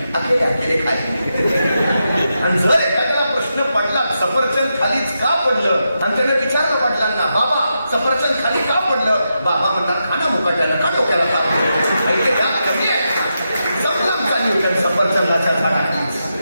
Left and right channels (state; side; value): inverted; both; correlation -0.86